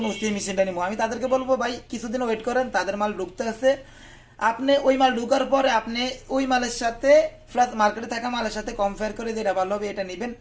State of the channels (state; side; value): identical; both; correlation 1.00